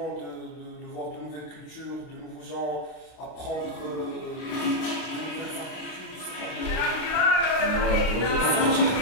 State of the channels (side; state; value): right; late; 32 ms